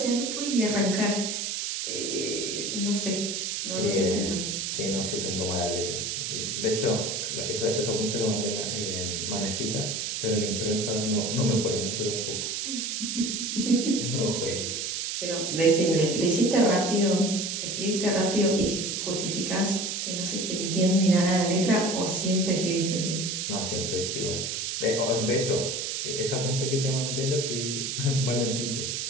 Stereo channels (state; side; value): noise; right; hiss, 2 dB below the sound